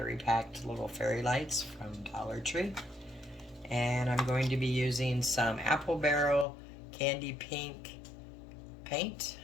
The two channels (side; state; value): right; drops out; at 6.5 s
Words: packed little fairy lights from Dollar Tree. And I'm going to be using some apple barrel candy pink paint,